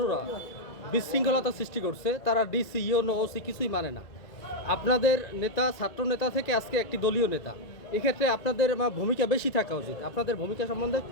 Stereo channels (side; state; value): right; late; 1.9 ms